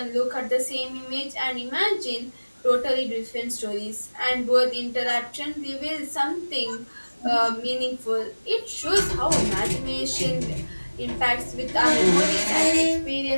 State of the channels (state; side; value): inverted; both; correlation -1.00